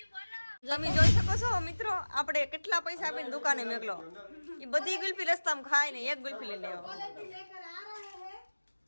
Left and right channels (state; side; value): inverted; both; correlation -1.00